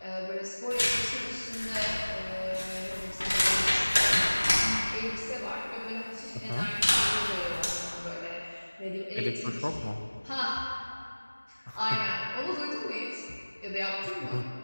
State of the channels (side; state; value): both; inverted; correlation -1.00